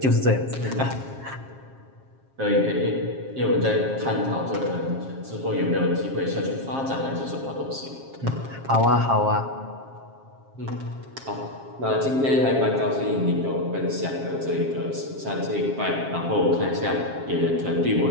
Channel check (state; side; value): late; left; 7.4 ms